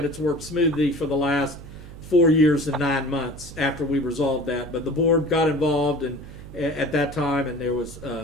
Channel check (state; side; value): noise; right; hum, 15 dB below the sound